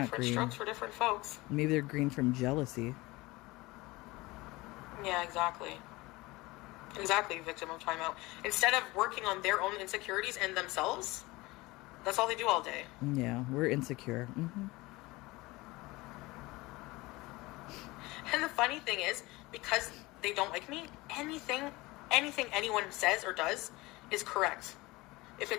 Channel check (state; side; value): quieter; right; 21.5 dB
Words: Different green. strokes for different folks. Maybe they're green from jealousy. Yeah, exactly. Exactly, victim of timeout. Instead of working on their own insecurities and themselves, that's all they do all day. Yeah, we're insecure. Mm-hmm. And the funny thing is, because they don't like me, anything anyone says or does is correct. if